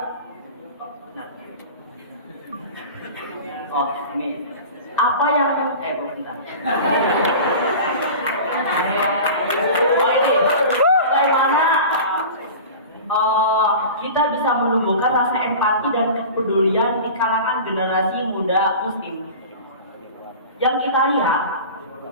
ini apa yang bentar. Ini bagaimana kita bisa menumbuhkan rasa empati dan kepedulian di kalangan generasi muda muslim. Yang kita lihat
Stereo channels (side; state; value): both; inverted; correlation -0.35